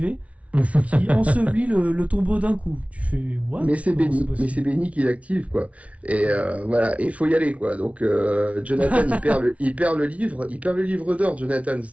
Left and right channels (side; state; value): left; late; 0.065 ms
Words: qui ensevelit le tombeau d'un coup. Tu fais, what? Mais c'est Benny qui l'active, quoi. Et voilà, et il faut y aller, quoi. Donc, Jonathan, il perd le livre d'or, Jonathan,